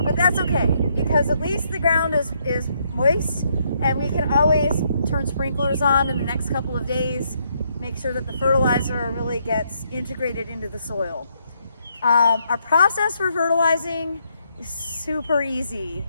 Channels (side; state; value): both; inverted; correlation -0.74